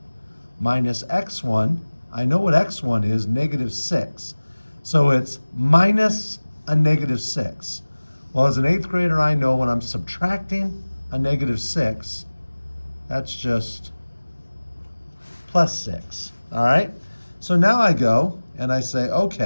minus x1. I know what x1 is, -6. So it's minus a -6. Well, as an 8th grader, I know when I'm subtracting a -6, that's just +6, all right? So now I go and I say,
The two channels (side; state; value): both; inverted; correlation -1.00